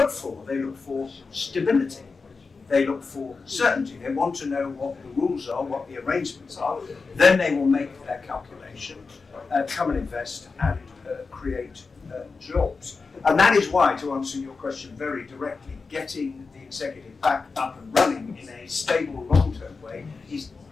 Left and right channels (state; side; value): quieter; right; 4.4 dB